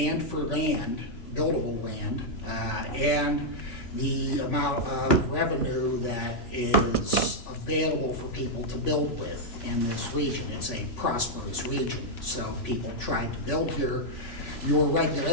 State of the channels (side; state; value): right; late; 3.5 ms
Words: for land, buildable land, and the amount of revenue that is available for people to build with in this region. It's a prosperous region, so people try to build here. Your